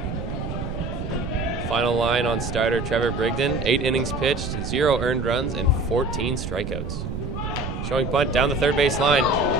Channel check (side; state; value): right; noise; rumble, 5 dB below the sound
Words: Final line on starter Trevor Brigden. 8 innings pitched, 0 earned runs, and 14 strikeouts. Showing bunt down the third base line.